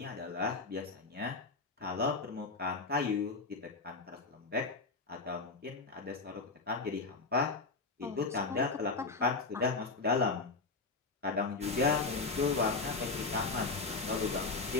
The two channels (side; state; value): right; quieter; 3.9 dB